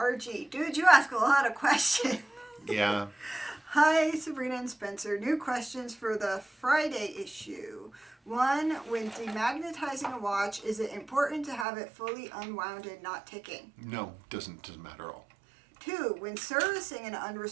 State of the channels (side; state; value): left; drops out; at 11.7 s